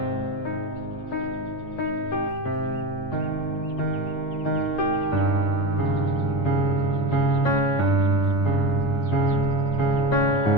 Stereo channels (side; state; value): right; late; 8.8 ms